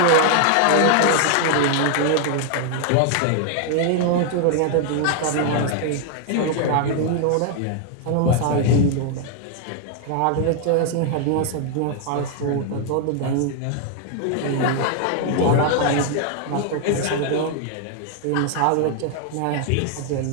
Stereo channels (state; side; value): different; both; correlation 0.00